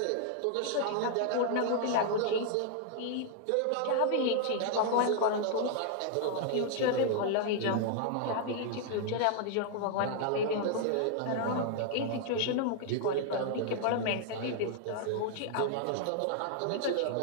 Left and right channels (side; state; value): both; different; correlation -0.01